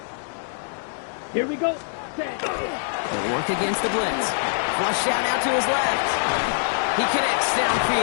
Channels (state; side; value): silent; right; 62 dB below the other